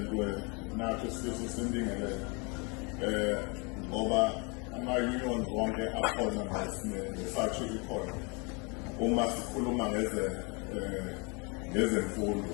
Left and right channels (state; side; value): quieter; right; 31.7 dB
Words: weNATO Sifiso Sindingelele ngoba ama-unions wonke akhona nesathu ikhona uma sikhuluma